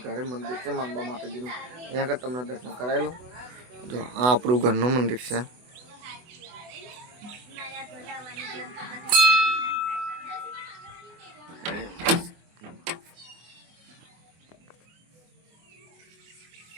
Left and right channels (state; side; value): late; left; 24 ms